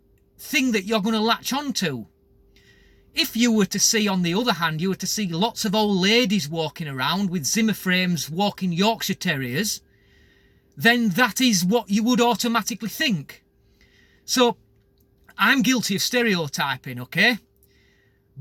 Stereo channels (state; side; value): identical; both; correlation 1.00